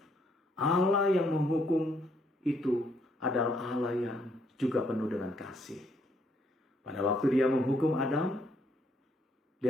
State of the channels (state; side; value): normal; both; correlation 0.70